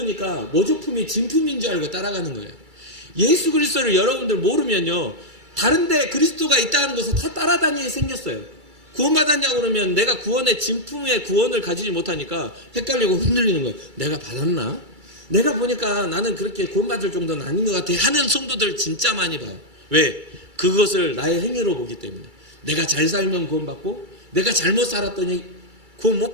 모조품이 진품인 줄 알고 따라가는 거예요. 예수 그리스도를 여러분들 모르면요, 다른데 그리스도가 있다는 것을 다 따라다니게 생겼어요. 구원받았냐고 그러면 내가 구원의 진품의 구원을 가지지 못하니까 헷갈리고 흔들리는 거예요. 내가 받았나? 내가 보니까 나는 그렇게 구원받을 정도는 아닌 것 같아 하는 성도들 진짜 많이 봐요. 왜? 그것을 나의 행위로 보기 때문에. 내가 잘 살면 구원받고 내가 잘못 살았더니 구원 못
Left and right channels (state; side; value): late; left; 2.3 ms